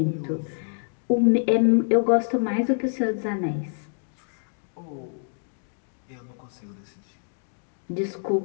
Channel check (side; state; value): right; silent; digital silence